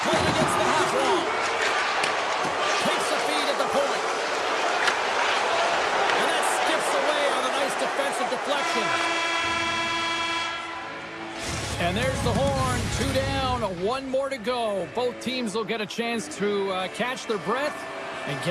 play it against the half wall. Takes a feed at the point. And that skips away on a nice defensive deflection. And there's the horn. 2 down, 1 more to go. Both teams will get a chance to catch their breath and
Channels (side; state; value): both; identical; correlation 1.00